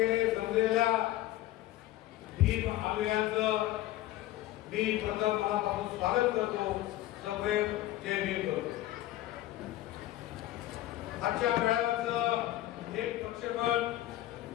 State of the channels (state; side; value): quieter; right; 15.2 dB